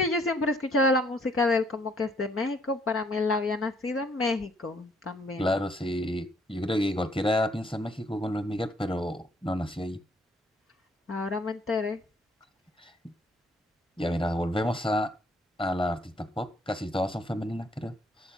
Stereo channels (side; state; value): both; normal; correlation 0.66